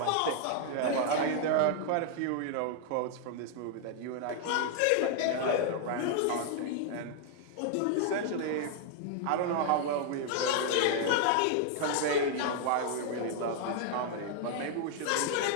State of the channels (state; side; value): different; both; correlation 0.00